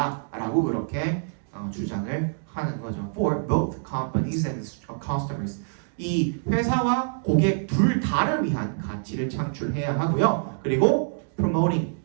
그렇게 주장을 하는 거죠. For both companies and customers. 이 회사와 고객 둘 다를 위한 가치를 창출해야 하고요. 그리고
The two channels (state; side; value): silent; left; digital silence